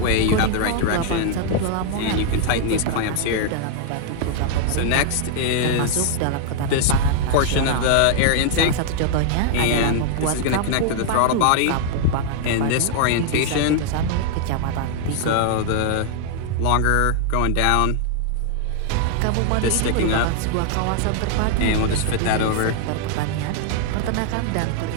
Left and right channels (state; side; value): different; both; correlation 0.00